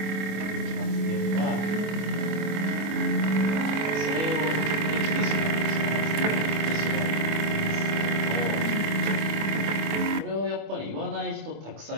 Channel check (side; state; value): left; late; 25 ms